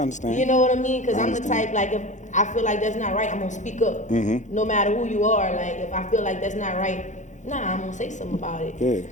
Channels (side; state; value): right; late; 0.35 ms